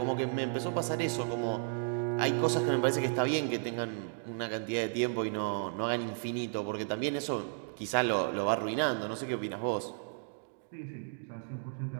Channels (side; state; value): left; silent; digital silence